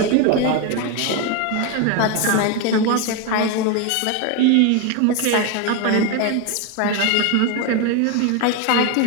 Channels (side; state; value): both; different; correlation 0.02